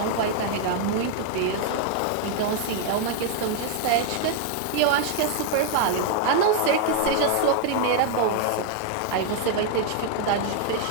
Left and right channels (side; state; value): both; different; correlation 0.00